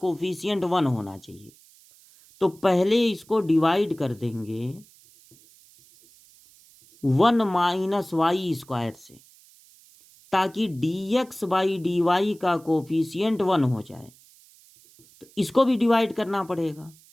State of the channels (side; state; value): right; noise; hiss, 27 dB below the sound